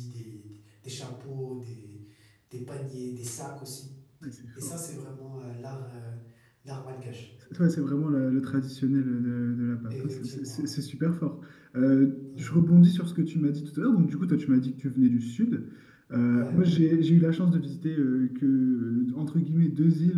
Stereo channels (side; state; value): both; identical; correlation 1.00